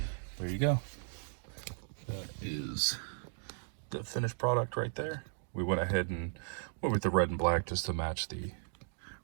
there you go. That is the finished product right there. We went ahead and went with the red and black just to match the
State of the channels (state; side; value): silent; left; digital silence